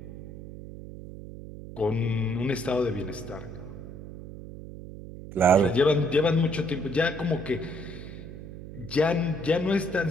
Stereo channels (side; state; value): right; noise; hum, 13 dB below the sound